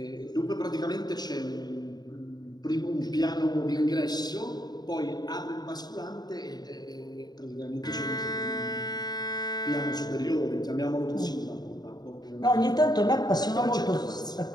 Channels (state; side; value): late; right; 0.20 ms